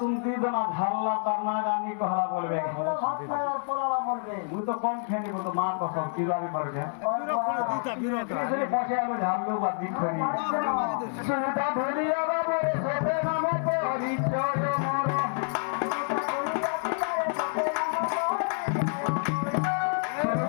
দোনা ঝাল্লা তার না গানি কহলা বলবে মুই তো কম খেয়ে বলতো মা কসম কিভাবে করবে বসে আলো ঝাল্লো বা দিক ধরি সুতা ধরিয়া বাবু সবে নাম পরিচয় মর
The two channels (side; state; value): right; silent; 59 dB below the other